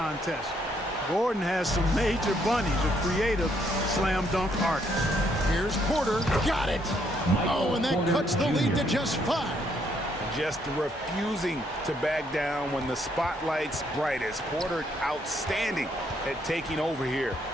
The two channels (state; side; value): normal; both; correlation 0.71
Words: Gordon has some major bunnies, a creative slam dunk artist. Here's Porter. Got it. Oh, and that cuts the lead to just 5. Just refusing to back down when the spotlight's brightest. Porter outstanding at taking over here